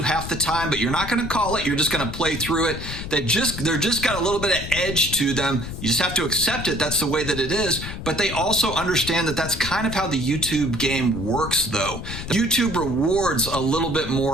half the time, but you're not going to call it. You're just going to play through it. They're just got a little bit of edge to them. You just have to accept it. That's the way that it is. But they also understand that that's kind of how the YouTube game works, though. YouTube rewards a little bit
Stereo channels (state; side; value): noise; left; rumble, 8 dB below the sound